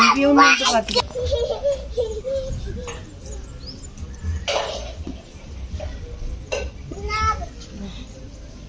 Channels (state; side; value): identical; both; correlation 1.00